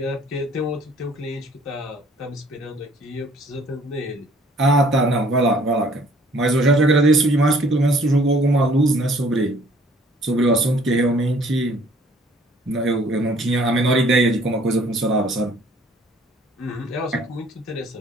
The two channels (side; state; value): both; normal; correlation 0.58